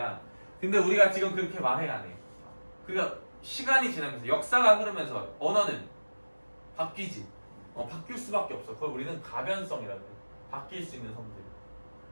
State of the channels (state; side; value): inverted; both; correlation -1.00